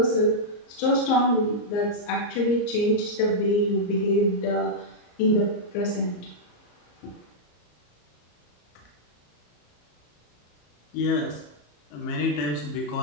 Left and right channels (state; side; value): late; right; 34 ms